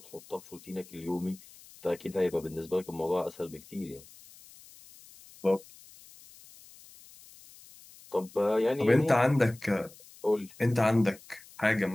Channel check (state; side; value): noise; left; hiss, 22 dB below the sound